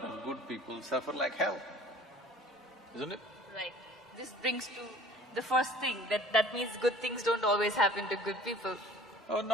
of good people suffer like hell, isn't it? Right. This brings to the first thing, that means good things don't always happen to good people. Oh,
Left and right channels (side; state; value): both; normal; correlation 0.48